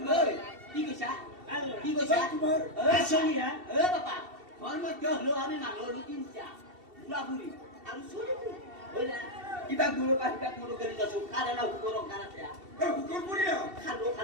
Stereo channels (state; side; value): late; left; 2.7 ms